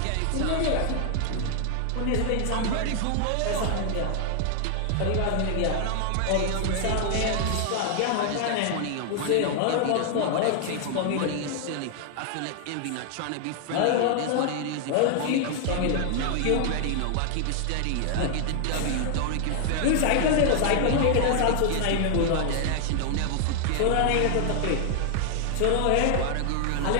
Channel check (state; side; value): different; both; correlation 0.00